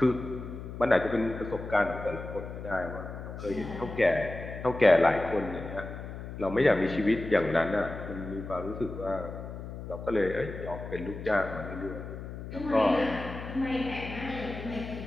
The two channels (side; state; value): left; noise; hum, 9 dB below the sound